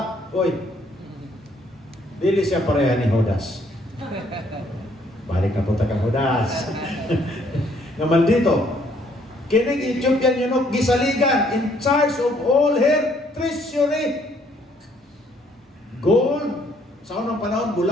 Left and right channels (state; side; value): normal; both; correlation 0.65